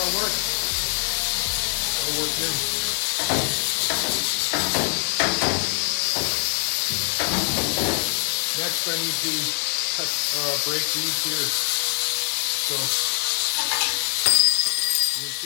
work. That'll work good. Next I need to break these here. So you can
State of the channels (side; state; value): right; silent; digital silence